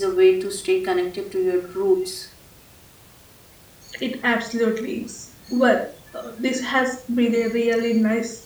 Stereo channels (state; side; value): identical; both; correlation 1.00